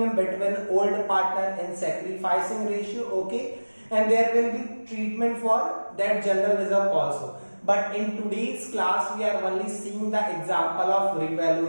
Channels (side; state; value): both; inverted; correlation -1.00